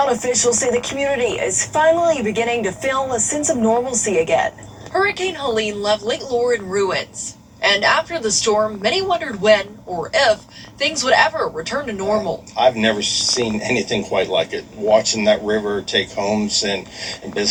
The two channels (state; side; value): identical; both; correlation 1.00